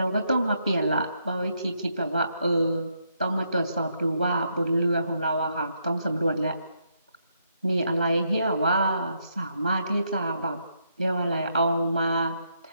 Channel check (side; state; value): both; inverted; correlation -0.77